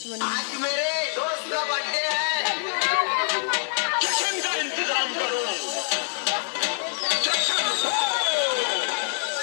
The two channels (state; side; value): silent; right; digital silence